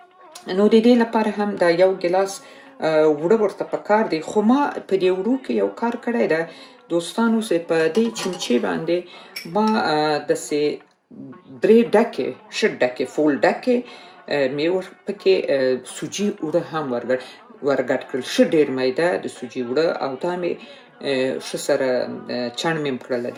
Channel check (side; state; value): both; identical; correlation 1.00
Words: نو د دې لپاره هم دا یو ګیلاس اوړه ورته پکار دی. خو ما په دې اوړو کې یو کار کړی ده دوستانو، چې په دې چمچې باندې ما داسې 3 ډکې ښه ډکې فول ډکې مې پکې سوجي اوړه هم ورګډ کړل، ښه ډېر میده د سوجي اوړه، او دا مې ښه سره چڼ مې کړل،